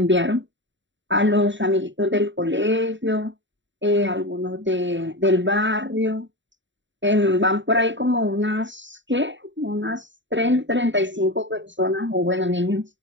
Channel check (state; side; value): late; left; 0.54 ms